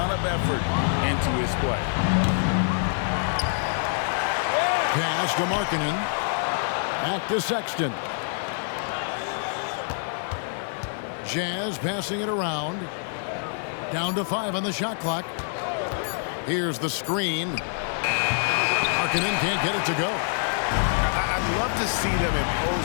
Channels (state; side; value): silent; right; 58 dB below the other